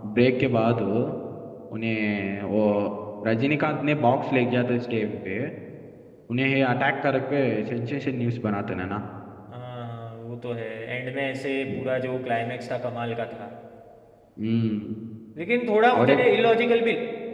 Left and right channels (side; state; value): both; identical; correlation 1.00